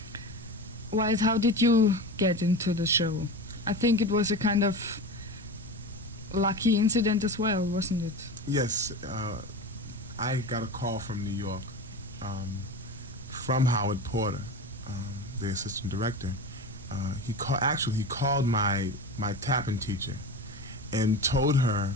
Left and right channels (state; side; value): normal; both; correlation 0.27